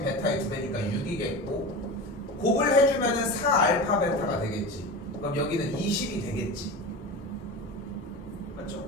베타의 2배니까 6이겠고 곱을 해주면은 4알파 베타가 되겠지. 그럼 여기는 20이 되겠지. 맞죠?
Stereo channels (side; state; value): both; normal; correlation 0.28